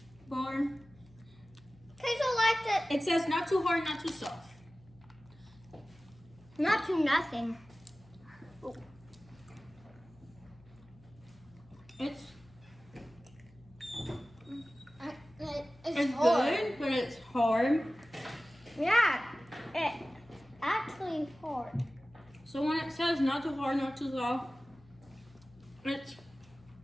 bar. Queso likes it. It says not too hard, not too soft. Not to nothing. It's It's hard. good, but it's hard. Yeah, it's actually hard. So when it says not too hard, not too soft, it's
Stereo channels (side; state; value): left; noise; hum, 25 dB below the sound